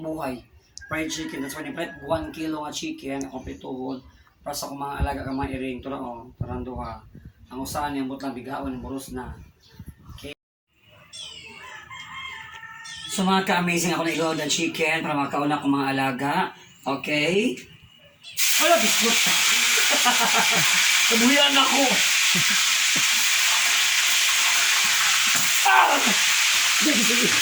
buhay. Fried chicken, that's why ni-prep 1 kilo nga chicken, kompletuhon, para sa akong mga alaga ka mga iring. Ito na o, parang duha. Ang usahan niyang butang bigaon, yung buros na. Okay. So mga ka-amazing, ako na-igawad ang chicken para makauna akong mga alaga. Okay? Wala, biskot. Kabuyan ako. Ah! Sige, sige.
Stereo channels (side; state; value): both; identical; correlation 1.00